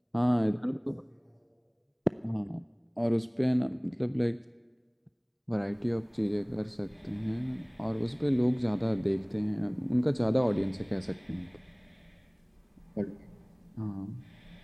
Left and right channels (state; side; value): identical; both; correlation 1.00